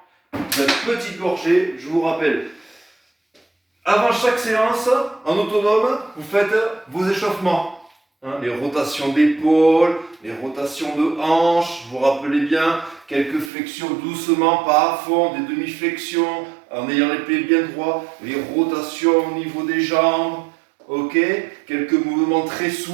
Une petite gorgée, je vous rappelle. Avant chaque séance, en autonome, vous faites vos échauffements. Hein, les rotations d'épaule, les rotations de hanches, vous vous rappelez bien, quelques flexions doucement, pas à fond, des demi-flexions, en ayant les pieds bien droits, les rotations au niveau des jambes, ok, quelques mouvements très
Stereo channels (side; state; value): left; drops out; at 13.5 s